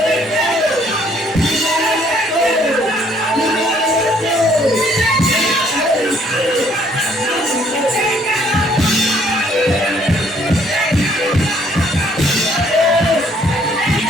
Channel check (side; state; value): both; normal; correlation 0.63